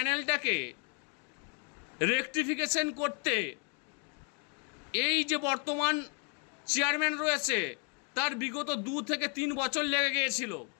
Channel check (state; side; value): quieter; right; 36.7 dB